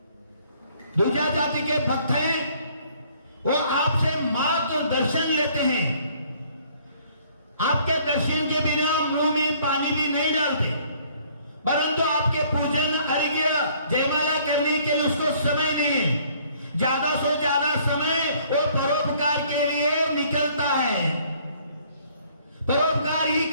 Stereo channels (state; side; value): inverted; both; correlation -0.60